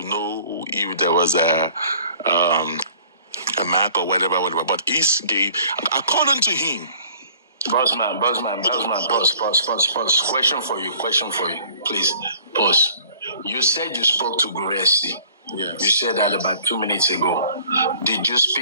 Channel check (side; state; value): both; inverted; correlation -0.53